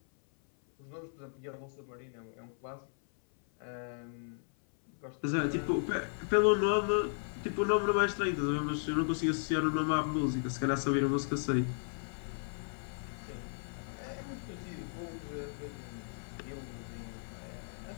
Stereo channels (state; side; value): silent; right; 54 dB below the other